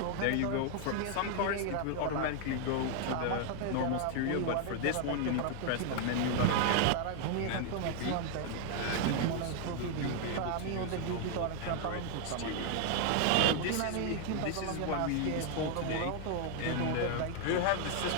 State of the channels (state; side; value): different; both; correlation 0.00